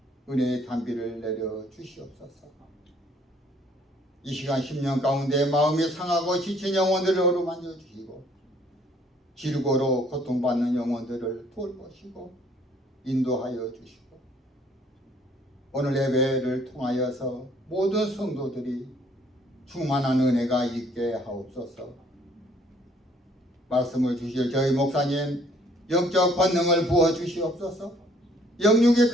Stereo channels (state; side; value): normal; both; correlation 0.61